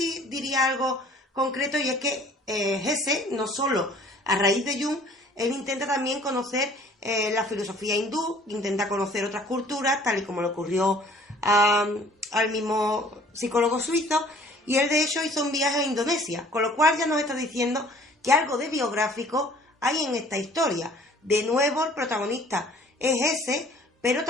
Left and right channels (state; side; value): normal; both; correlation 0.53